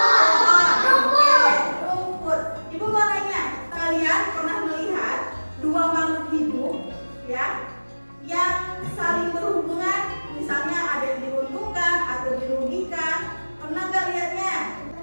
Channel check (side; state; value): both; inverted; correlation -1.00